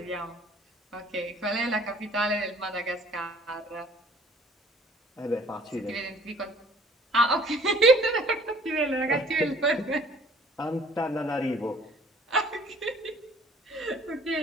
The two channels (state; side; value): normal; both; correlation 0.54